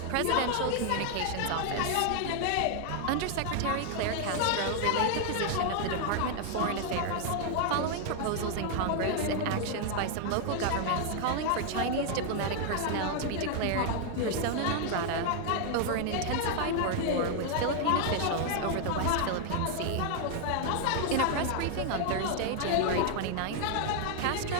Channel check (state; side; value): different; both; correlation 0.00